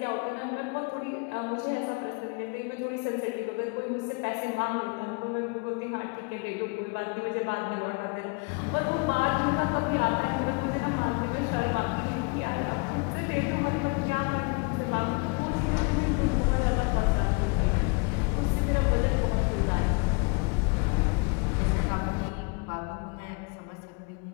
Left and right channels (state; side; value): quieter; right; 32.3 dB